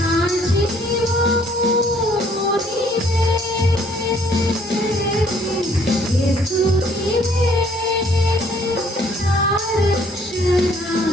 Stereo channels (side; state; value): both; normal; correlation 0.61